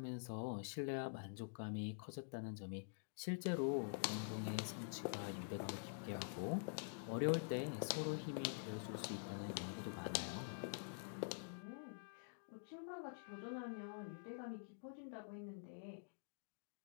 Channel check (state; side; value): silent; right; digital silence